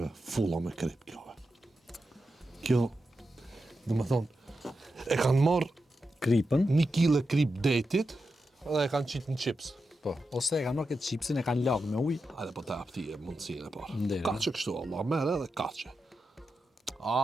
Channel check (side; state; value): both; normal; correlation 0.89